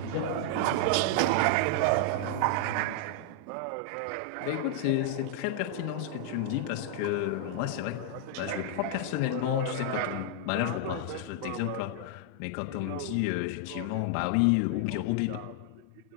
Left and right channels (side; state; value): both; different; correlation -0.01